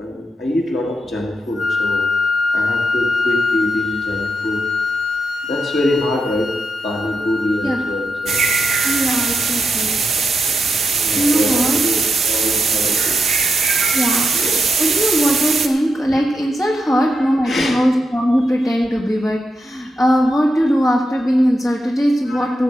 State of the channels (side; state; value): both; normal; correlation 0.85